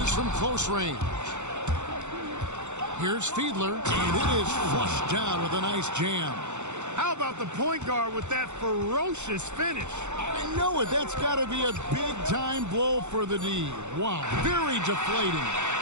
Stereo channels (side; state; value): left; late; 0.83 ms